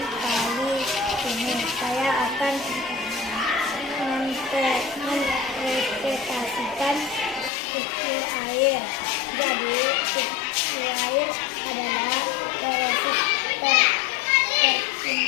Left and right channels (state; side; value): drops out; right; at 7.5 s